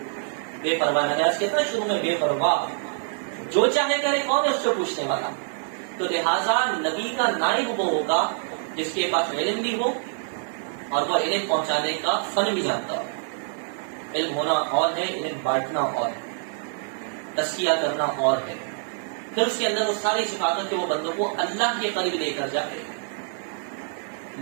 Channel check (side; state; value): left; silent; 56 dB below the other